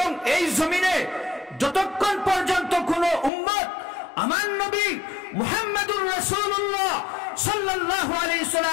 এই জমিনে যতক্ষণ পর্যন্ত কোন উম্মত আমার নবী মুহাম্মদুর রাসূলুল্লাহ সাল্লাল্লাহু আলাইহি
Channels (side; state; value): right; drops out; at 3.3 s